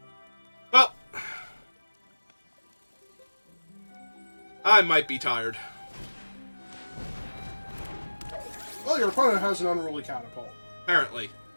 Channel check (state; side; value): inverted; both; correlation -1.00